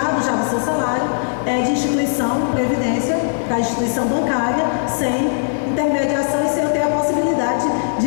já do seu salário, é de instituição, previdência, da instituição bancária, sem intermediação e sem ter a possibilidade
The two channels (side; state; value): right; silent; digital silence